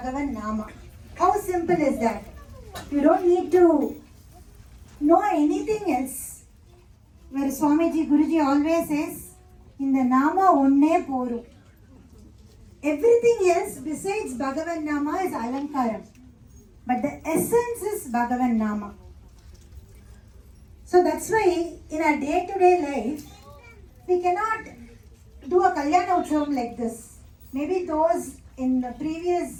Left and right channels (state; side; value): identical; both; correlation 1.00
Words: Nama. How simple is that? You don't need to know anything else. Where Swamiji, Guruji always says, in the Nama onne poru. Everything else besides Bhagavan Nama is Alankaram. But the essence is Bhagavan Nama. So that's why in our day-to-day life, we cannot do a Kalyana Utsavam like this. Maybe those in the